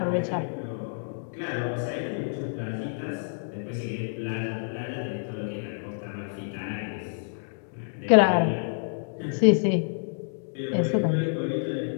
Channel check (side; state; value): right; silent; digital silence